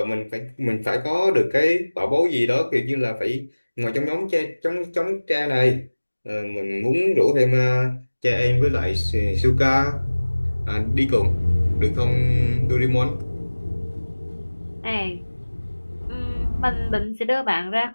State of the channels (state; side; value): inverted; both; correlation -1.00